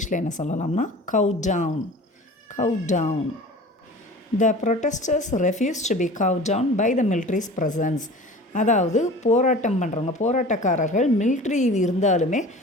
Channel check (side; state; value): both; normal; correlation 0.40